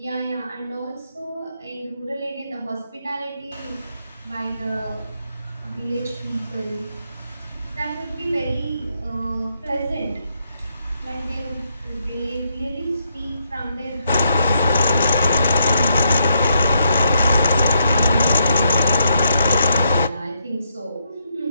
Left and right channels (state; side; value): inverted; both; correlation -0.78